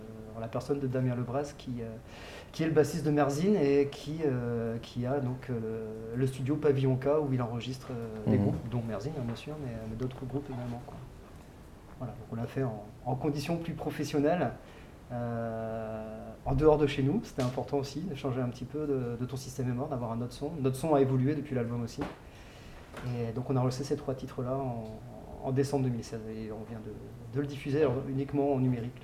la personne de Damien Lebras qui est le bassiste de Merzine et qui a donc le studio Pavillon K où il enregistre des groupes, dont Merzine bien sûr, mais d'autres groupes également, quoi. Voilà, donc on l'a fait en conditions plus professionnelles, en dehors de chez nous. C'était important aussi de changer un petit peu de Ton système est mort, d'avoir un autre son. Notre son a évolué depuis l'album aussi. Et donc on a enregistré ces trois titres-là en décembre 2016 et on vient de le diffuser uniquement en numérique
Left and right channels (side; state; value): both; identical; correlation 1.00